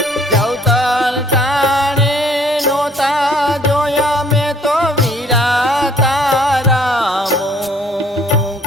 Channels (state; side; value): normal; both; correlation 0.59